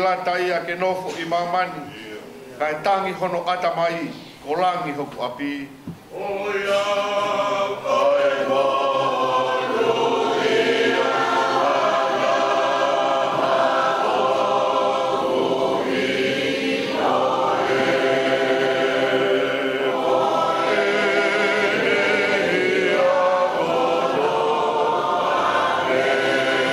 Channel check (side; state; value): both; identical; correlation 1.00